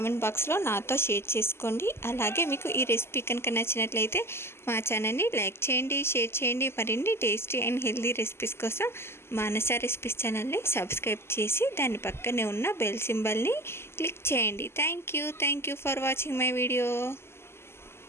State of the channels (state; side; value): late; right; 0.12 ms